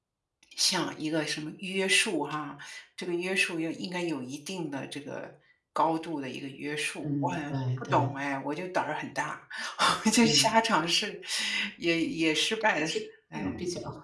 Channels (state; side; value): identical; both; correlation 1.00